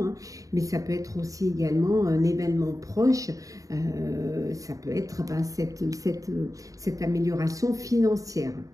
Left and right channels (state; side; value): late; left; 0.16 ms